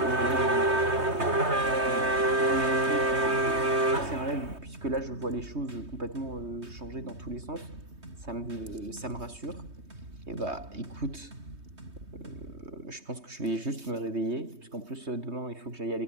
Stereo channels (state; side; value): late; left; 3.2 ms